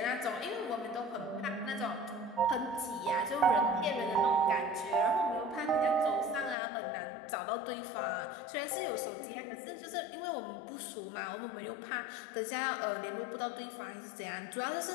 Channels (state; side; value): drops out; right; at 6.6 s